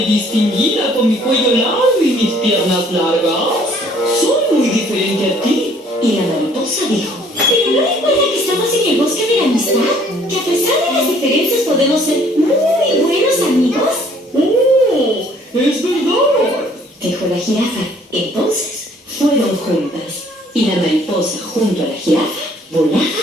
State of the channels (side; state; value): both; normal; correlation 0.59